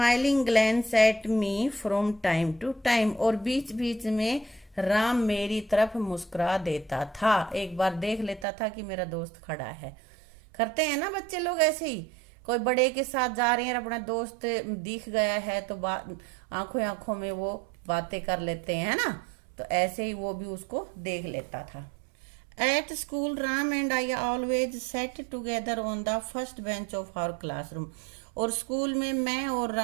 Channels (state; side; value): drops out; left; at 8.5 s